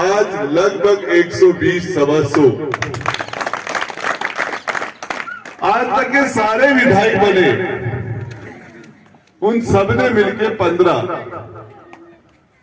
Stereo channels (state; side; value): identical; both; correlation 1.00